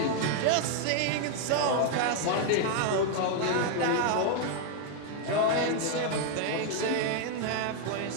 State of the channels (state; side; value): different; both; correlation 0.00